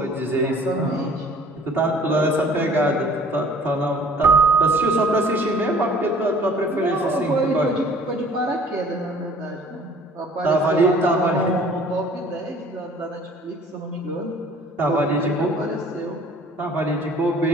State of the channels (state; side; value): normal; both; correlation 0.53